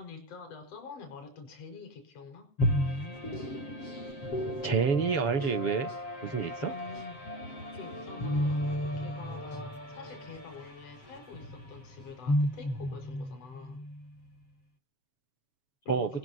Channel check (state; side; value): late; right; 7.5 ms